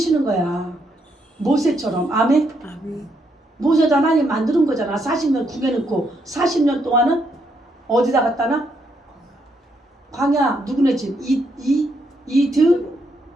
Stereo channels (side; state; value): both; normal; correlation 0.76